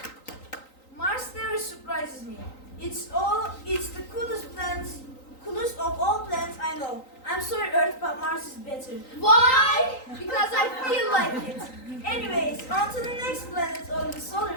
Mars never surprises me. It's the coolest of all planets I know. I'm sorry, Earth, but Mars is better. Why? Because I feel like it. Anyways, on to the next planet of the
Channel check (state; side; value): late; right; 3.9 ms